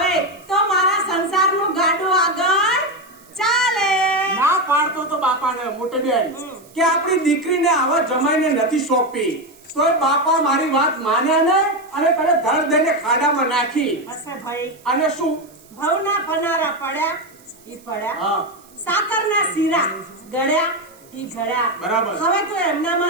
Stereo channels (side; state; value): right; noise; hiss, 27 dB below the sound